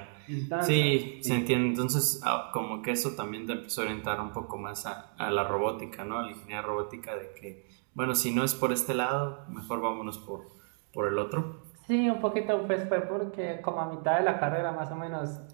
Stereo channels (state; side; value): silent; left; 57 dB below the other